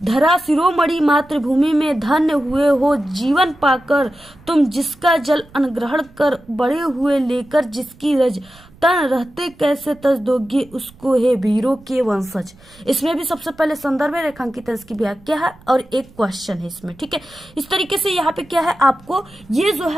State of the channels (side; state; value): right; noise; rumble, 26 dB below the sound